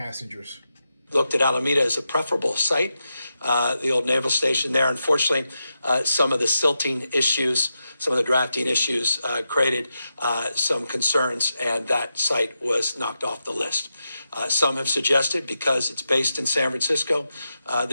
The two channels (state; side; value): inverted; both; correlation -0.88